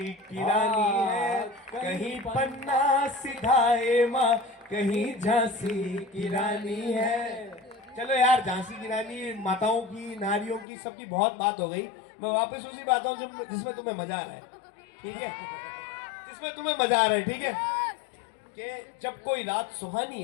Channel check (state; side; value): drops out; right; at 10.7 s